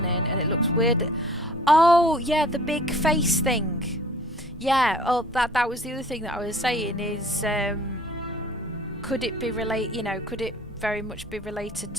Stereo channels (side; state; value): both; normal; correlation 0.50